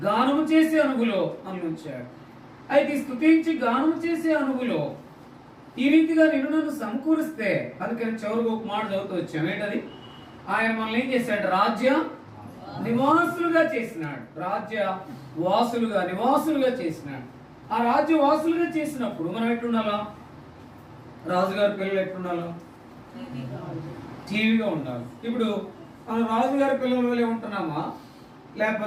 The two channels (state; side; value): identical; both; correlation 1.00